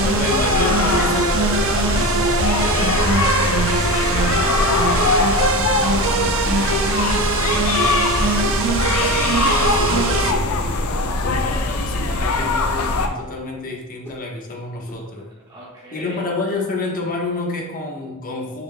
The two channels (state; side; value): normal; both; correlation 0.27